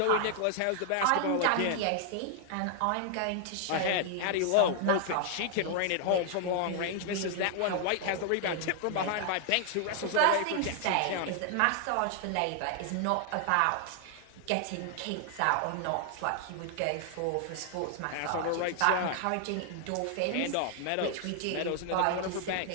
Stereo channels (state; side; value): different; both; correlation 0.00